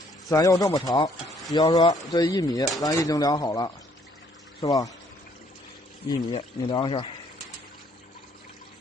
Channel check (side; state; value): both; normal; correlation 0.65